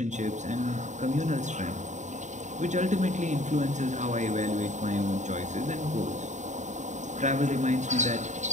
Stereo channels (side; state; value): left; late; 0.35 ms